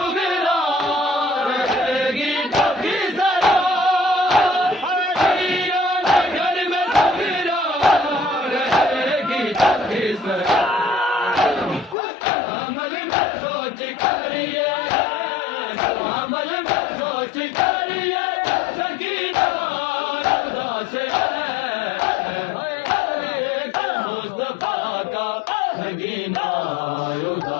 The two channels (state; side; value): drops out; right; at 12.0 s